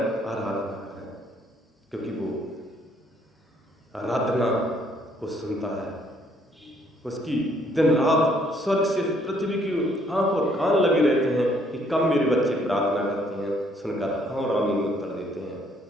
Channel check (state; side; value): normal; both; correlation 0.66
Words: आराधना करें, क्योंकि वो आराधना को सुनता है। उसकी दिन रात स्वर्ग से पृथ्वी की आंख और कान लगे रहते हैं कि कब मेरे बच्चे प्रार्थना करते हैं, सुनकर हाँ और आमीन उत्तर देते हैं,